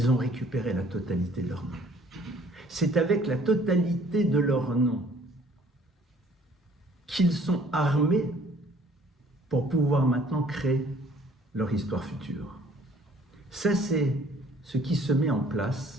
ont récupéré la totalité de leur nom. C'est avec la totalité de leur nom qu'ils sont armés pour pouvoir maintenant créer leur histoire future. Ça, c'est ce qui se met en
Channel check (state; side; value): normal; both; correlation 0.57